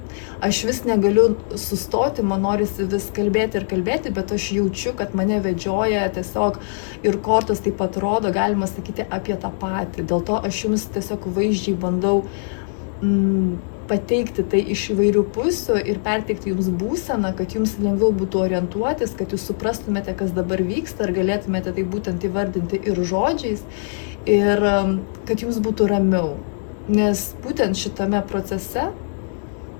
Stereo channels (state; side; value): silent; right; 64 dB below the other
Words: Aš vis negaliu sustoti, man norisi vis kalbėti ir kalbėti, bet aš jaučiu, kad mane vedžioja tiesiog ir kortos taip pat rodo, galima sakyti, apie tą patį. Dėl to aš jums tiesiog vaizdžiai bandau pateikti tai iš įvairių pusių ir perteikti jums būseną, kad jums lengviau būtų orientuotis, kad jūs suprastumėte, kas dabar vyksta, ir galėtumėte tai būtent įvardinti ir žodžiais, ir kad jums būtų ramiau. Nes būtent šitame procese